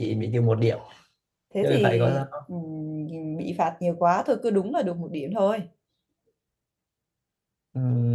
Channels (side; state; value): both; identical; correlation 1.00